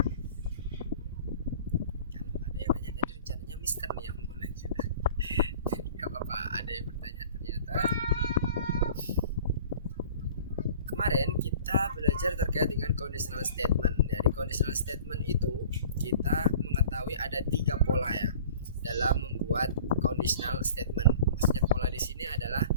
Kalau nggak ada yang nanya, tadi rencananya Mister nih yang mau nanya. Jadi nggak apa-apa, ada yang bertanya ternyata. Kemarin kita belajar terkait dengan conditional statement. Dari conditional statement itu kita mengetahui ada 3 pola ya dalam membuat conditional statement. Maksudnya pola di sini adalah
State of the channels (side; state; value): both; inverted; correlation -0.45